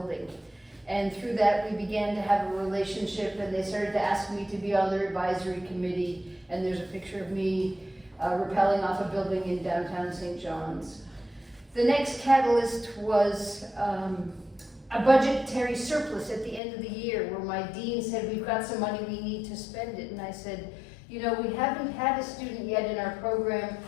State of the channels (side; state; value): right; drops out; at 16.6 s